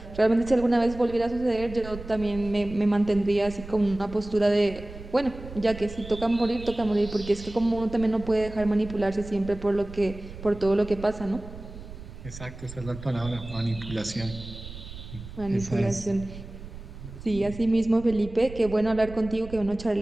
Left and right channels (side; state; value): right; noise; rumble, 13 dB below the sound